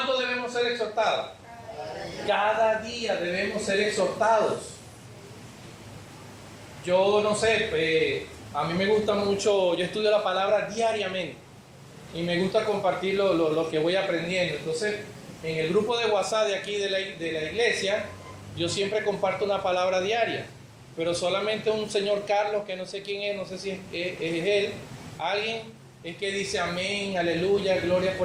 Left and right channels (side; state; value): both; identical; correlation 1.00